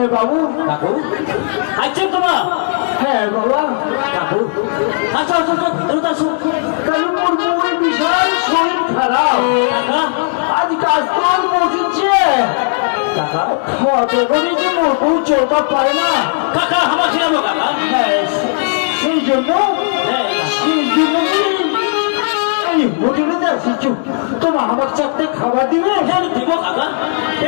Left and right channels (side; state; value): right; silent; digital silence